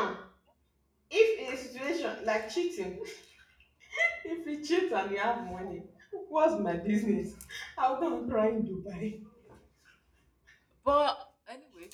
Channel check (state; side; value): identical; both; correlation 1.00